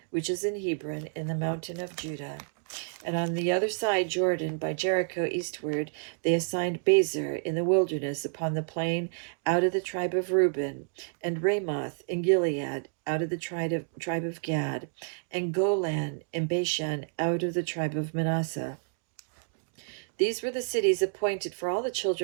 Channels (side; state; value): left; silent; digital silence